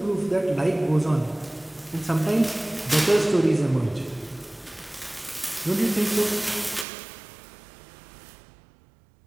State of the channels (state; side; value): drops out; left; at 6.9 s